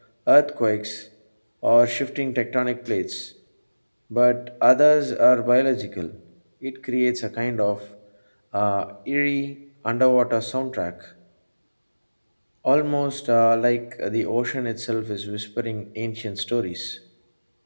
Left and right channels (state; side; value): inverted; both; correlation -1.00